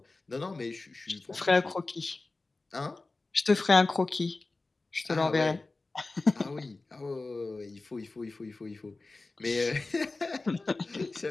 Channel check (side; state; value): right; quieter; 3.4 dB